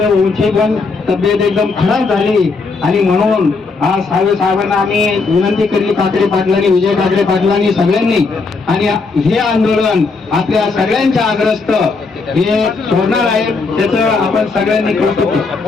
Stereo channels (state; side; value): quieter; right; 4.2 dB